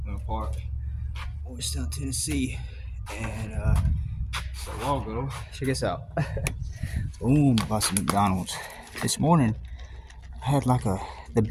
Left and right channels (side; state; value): both; identical; correlation 1.00